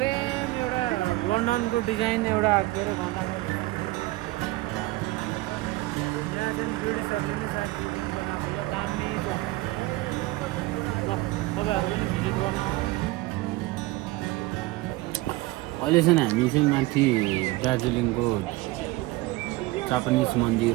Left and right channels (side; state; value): left; quieter; 19.9 dB